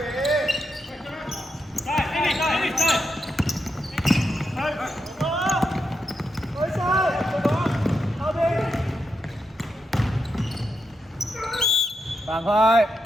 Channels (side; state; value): both; normal; correlation 0.85